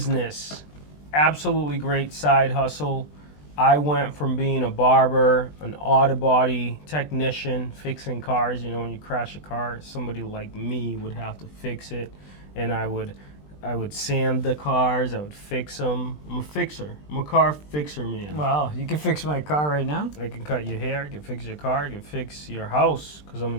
absolutely great side hustle. I went from being a barber, an auto body technician, fixing cars. You know, when you crash a car, somebody like me would have to fix it, and I would sand the cars. I would fix them. I'm a fixer. I'm a car fixer, man. Wow, you can fix my car right now? I can cut your hair, I can fix your car, I can fix your house because I'm a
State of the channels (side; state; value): right; late; 20 ms